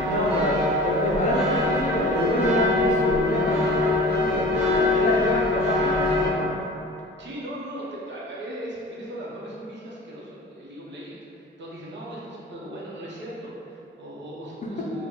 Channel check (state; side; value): normal; both; correlation 0.39